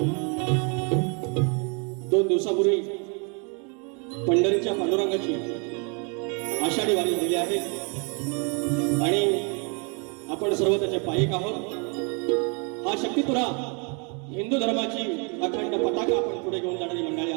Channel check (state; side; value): quieter; left; 35.5 dB